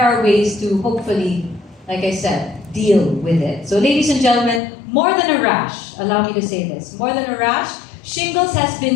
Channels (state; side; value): drops out; right; at 4.6 s